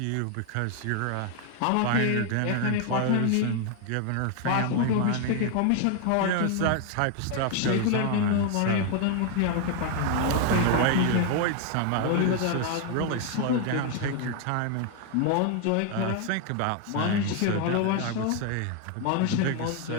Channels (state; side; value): different; both; correlation 0.01